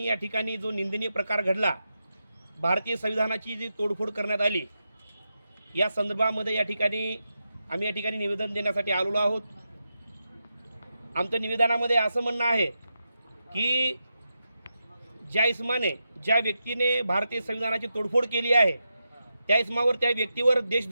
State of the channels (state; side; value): inverted; both; correlation -0.88